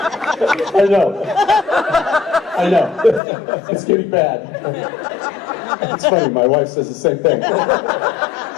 I know. It's getting bad. It's funny, my wife says the same thing.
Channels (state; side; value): drops out; right; at 3.2 s